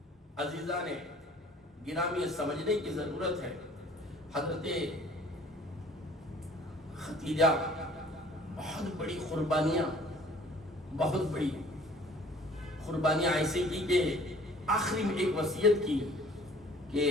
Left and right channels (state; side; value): normal; both; correlation 0.52